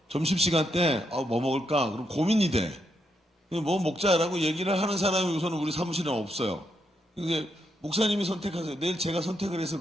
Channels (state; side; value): normal; both; correlation 0.80